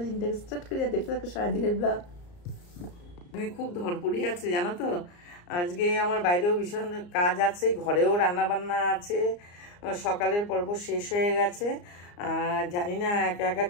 দিনটাকে স্টার্ট করি আর দেখতে থাকো সারাদিনের ব্লগ। খুব ধরপড়ি আছে জানো তো, আজকে আমার বাইরেও ভীষণ কাজ আছে, ঘরেও রান্না বান্না আছে, সকালের পর্ব শেষ হয়ে গেছে। জানি না একা একা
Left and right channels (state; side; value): late; right; 34 ms